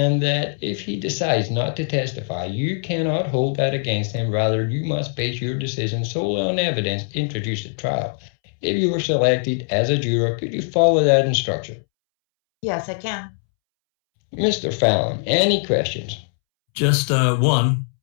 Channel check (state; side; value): silent; right; 65 dB below the other